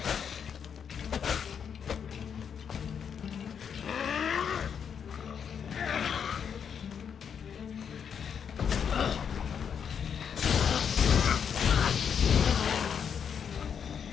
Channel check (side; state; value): right; quieter; 7.4 dB